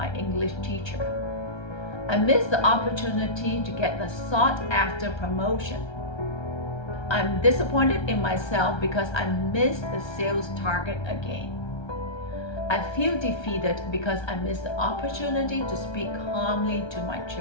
English teacher. I missed the opportunity to get the sought-after promotion. I'm disappointed in myself because I missed the sales target again. I feel defeated because I missed the opportunity to speak calmly to my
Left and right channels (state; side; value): late; right; 1.3 ms